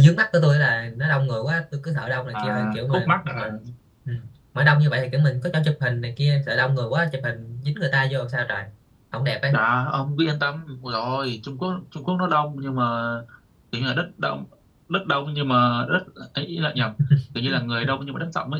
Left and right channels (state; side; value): identical; both; correlation 1.00